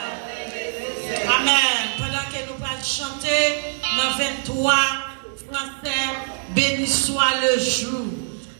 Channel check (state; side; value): silent; left; 63 dB below the other